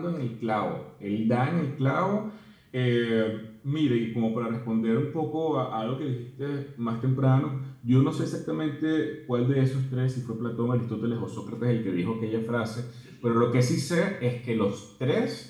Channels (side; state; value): both; identical; correlation 1.00